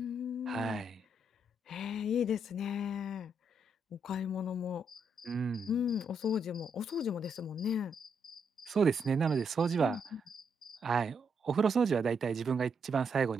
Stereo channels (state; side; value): normal; both; correlation 0.78